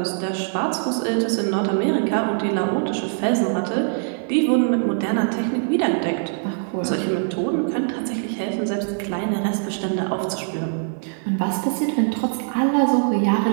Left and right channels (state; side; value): silent; left; digital silence